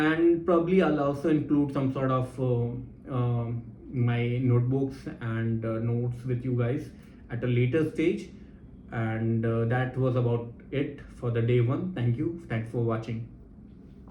probably I'll also include some sort of my notebooks and notes with you guys at a later stage. And that was about it for the day one. Thank you. Thanks for watching.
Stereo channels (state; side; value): identical; both; correlation 1.00